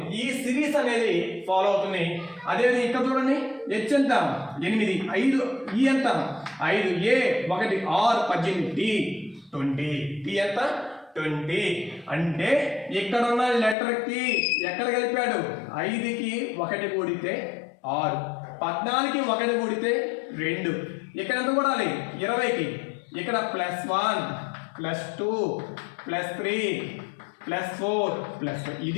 ఈ సిరీస్ అనేది ఫాలో అవుతుంది. అదేవిధంగా ఇక్కడ చూడండి, హెచ్ ఎంత? 8, 5, ఈ ఎంత? 5, A 1, R 18, D 20, T ఎంత? 20. అంటే ఇక్కడ ఉన్న లెటర్కి ఎక్కడ కలిపాడు? 5కి 1 కూడితే 6, 14కి 1 కూడితే 2. ఇక్కడ ఎంత కూడాలి? 20కి. ఇక్కడ +1 +2 +3 +4 +5.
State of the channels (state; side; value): drops out; right; at 13.8 s